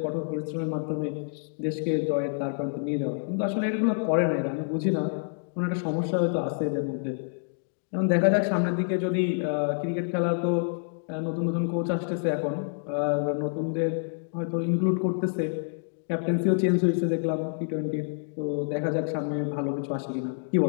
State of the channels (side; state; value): right; silent; digital silence